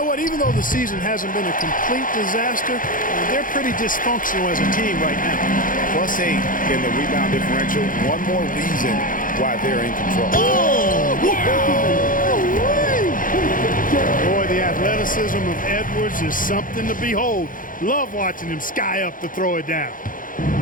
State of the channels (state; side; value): late; right; 0.39 ms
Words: what? Even though the season hasn't been a complete disaster, they're pretty dysfunctional as a team right now. +8 in the rebound differential. One more reason why they're in control. Boy, the athleticism of Edwards is something to behold. Love watching him sky up to throw it down.